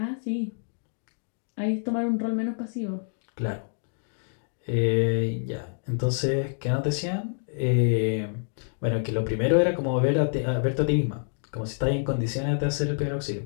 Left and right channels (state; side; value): silent; right; digital silence